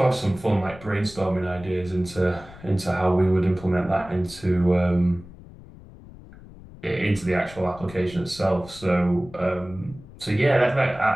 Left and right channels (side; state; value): left; noise; rumble, 19 dB below the sound